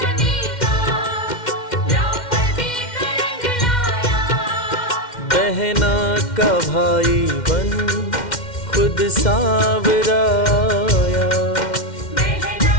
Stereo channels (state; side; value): late; right; 2.1 ms